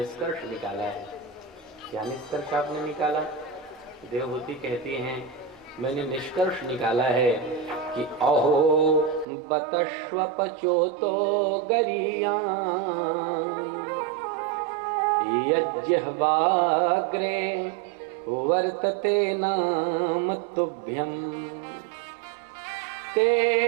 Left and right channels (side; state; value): left; drops out; at 9.2 s